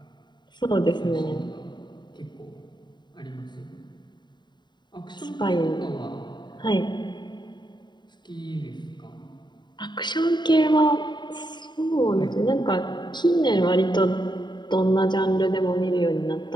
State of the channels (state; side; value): late; right; 0.22 ms